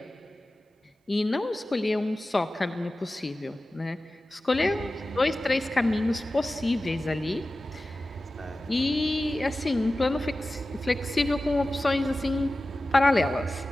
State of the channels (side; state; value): both; normal; correlation 0.95